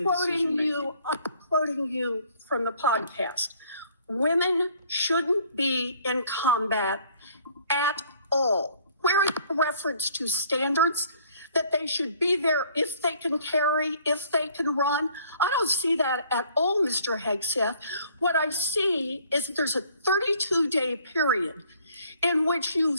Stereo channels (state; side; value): inverted; both; correlation -0.58